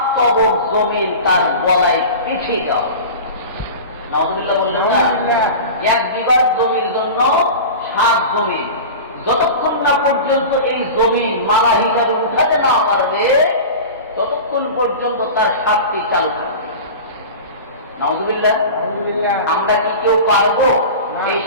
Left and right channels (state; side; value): inverted; both; correlation -0.32